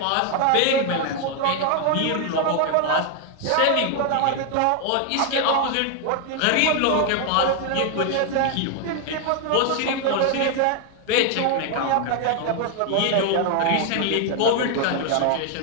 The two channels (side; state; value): both; different; correlation 0.01